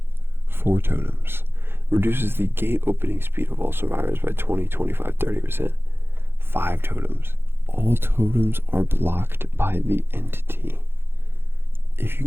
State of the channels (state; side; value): late; left; 0.11 ms